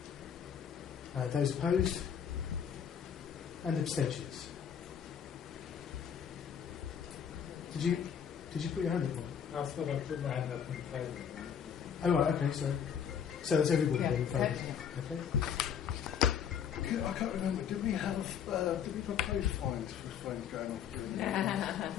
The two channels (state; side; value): quieter; right; 8.0 dB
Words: Those opposed? And abstentions? Did you put your hand up, Mike? I thought I put my hand up in favour. Oh, right, okay, sorry. So that's everybody Yeah, in favour? Okay. I can't remember, did we propose fines for flames going off during the